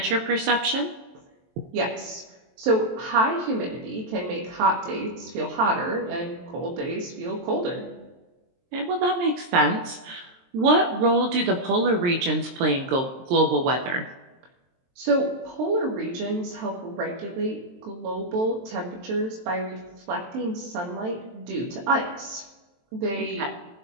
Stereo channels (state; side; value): late; left; 23 ms